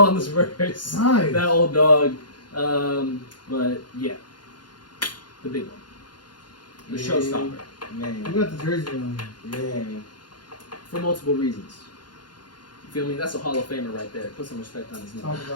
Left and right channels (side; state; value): right; late; 0.71 ms